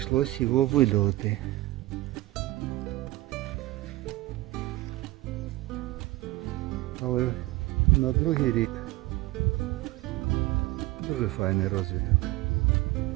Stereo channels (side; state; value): left; quieter; 18.6 dB